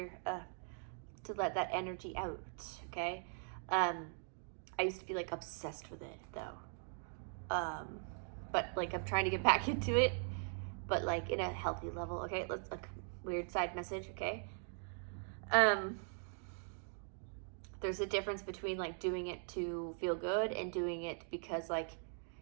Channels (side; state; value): left; silent; 50 dB below the other